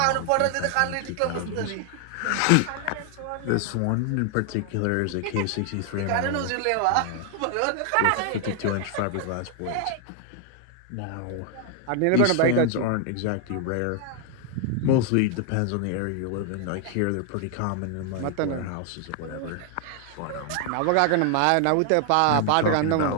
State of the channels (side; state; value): both; different; correlation 0.00